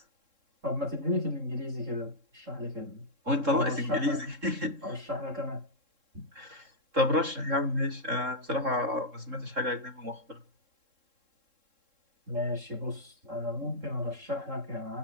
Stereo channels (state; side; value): late; left; 3.7 ms